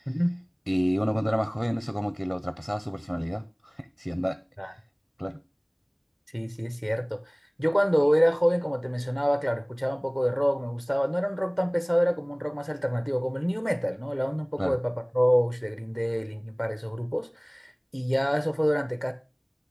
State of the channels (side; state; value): both; identical; correlation 1.00